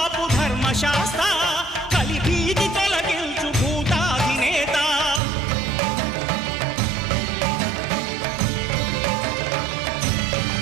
ధర్మశాస్త్ర కలిభీతి తొలగించు భూతాధినేత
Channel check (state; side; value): drops out; left; at 5.2 s